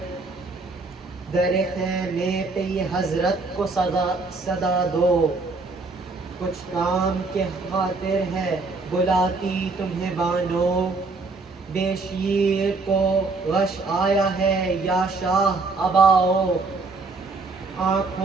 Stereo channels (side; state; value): left; quieter; 3.8 dB